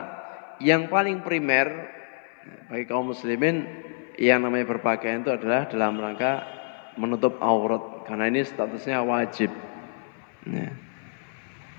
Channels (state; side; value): silent; right; 56 dB below the other